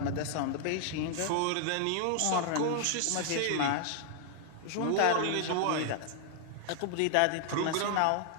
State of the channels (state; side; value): different; both; correlation 0.00